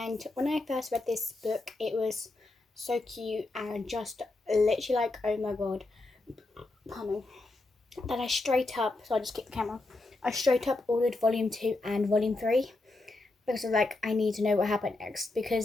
when I first read this book it was so cute and just literally like, oh my god, pardon me, that I straight up, so I just kicked the camera, I straight up ordered volume 2 and volume 3 because of like, I need to know what happened next,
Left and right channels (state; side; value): quieter; right; 3.0 dB